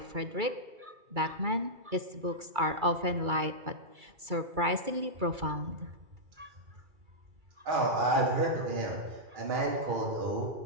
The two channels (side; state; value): left; late; 2.3 ms